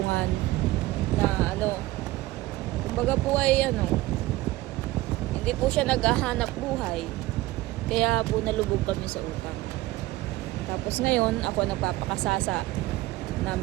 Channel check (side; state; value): left; quieter; 18.2 dB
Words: na kumbaga po ay hindi po siya naghahanap buhay. Kaya po nalubog kami sa utang. Tapos ngayon, ako nagpapakasasa na